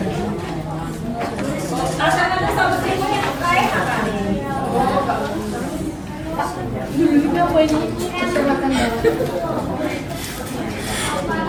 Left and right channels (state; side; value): identical; both; correlation 1.00